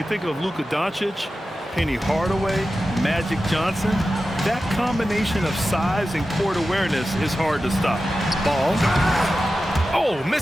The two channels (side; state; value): both; normal; correlation 0.93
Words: think of Luka Doncic, Penny Hardaway, Magic Johnson. That combination of size and court awareness is hard to stop. Ball. Oh,